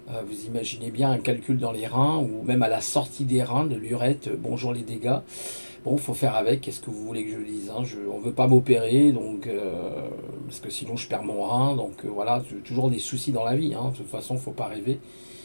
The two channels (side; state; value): both; inverted; correlation -1.00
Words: Vous imaginez bien un calcul dans les reins ou même à la sortie des reins de l'urètre, bonjour les dégâts. Bon, il faut faire avec, qu'est-ce que vous voulez que je dise, on ne veut pas m'opérer, parce que sinon je perds mon rein. Voilà, toujours des soucis dans la vie, de toute façon, il ne faut pas rêver.